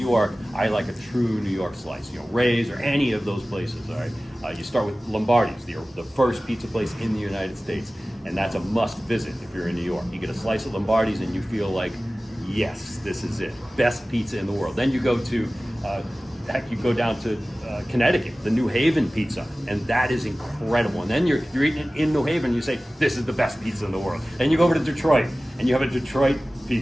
I like a true New York slice. Ray's or any of those places, all right? You start with Lombardi's, the first pizza place in the United States, and that's a must visit if you're in New York. You get a slice of Lombardi's and you feel like, yes, this is it. Best pizza in the world. Then you go to, you go down to Connecticut, the New Haven pizza, and that is incredible. And then you're eating it in New Haven, you say, this is the best pizza in the world. Then you go over to Detroit, and you have a Detroit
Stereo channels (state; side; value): normal; both; correlation 0.97